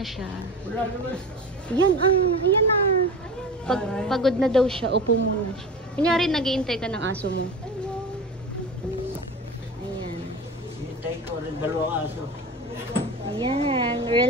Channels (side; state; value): both; normal; correlation 0.31